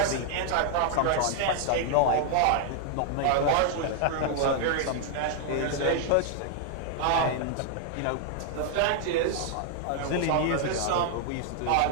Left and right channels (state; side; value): different; both; correlation 0.00